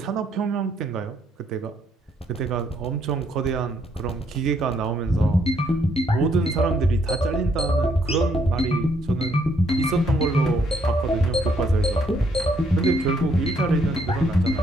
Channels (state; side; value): normal; both; correlation 0.70